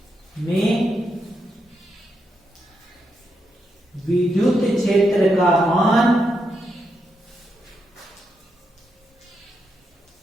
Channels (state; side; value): normal; both; correlation 0.83